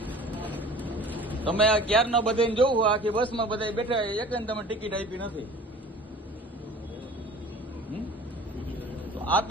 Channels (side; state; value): both; normal; correlation 0.44